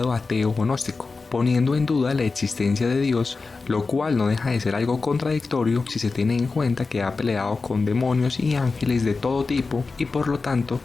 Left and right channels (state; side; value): quieter; right; 4.1 dB